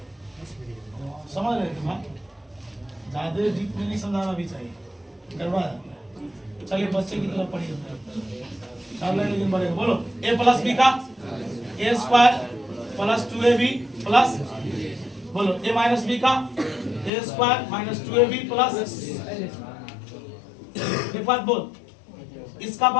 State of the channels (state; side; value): drops out; right; at 17.1 s